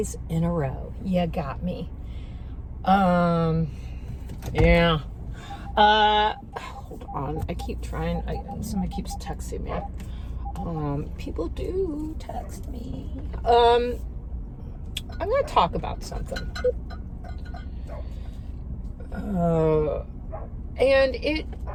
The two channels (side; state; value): both; identical; correlation 1.00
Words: in a row. You got me. Yeah. Hold on. I keep trying. Somebody keeps texting me. People do text me. I'm going to talk about something. And it